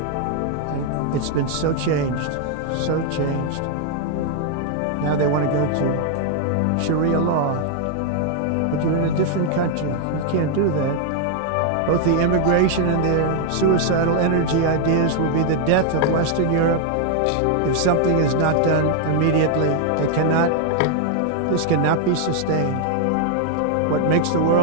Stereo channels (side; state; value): both; different; correlation 0.00